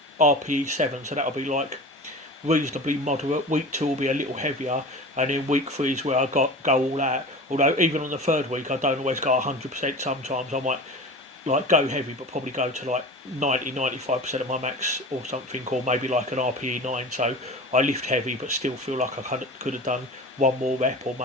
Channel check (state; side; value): normal; both; correlation 0.34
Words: RPE 7, so that'll be like reasonably moderate. Week 2 will be a little heavier, and then week 3 is where I go all out. Although even on the 3rd week I don't always go 100%. Sometimes I might like go heavy, but probably go to like 90-95% of my max or something, or maybe like an RPE 9. So I lift heavy, but still feel like I could have done one more rep or